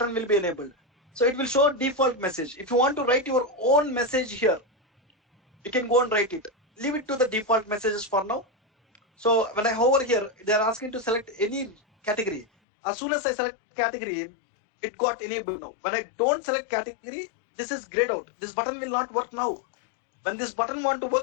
will be enabled. So it will show default message. If you want to write your own message here, you can go and write it. Leave it to the default messages for now. So when I hover here, they are asking to select any category. As soon as I select category, it got enabled now. When I don't select category, this is grayed out. This button will not work now. When this button want to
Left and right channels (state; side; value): drops out; right; at 12.5 s